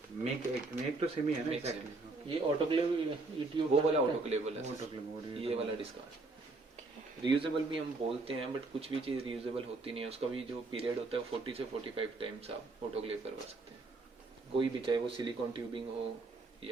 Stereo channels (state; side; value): quieter; left; 3.4 dB